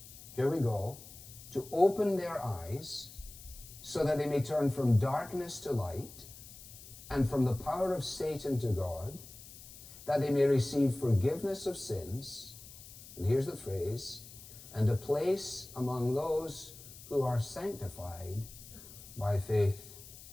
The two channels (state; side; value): noise; left; hiss, 17 dB below the sound